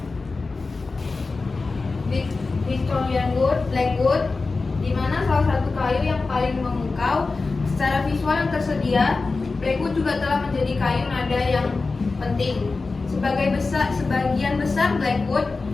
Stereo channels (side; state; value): right; quieter; 3.9 dB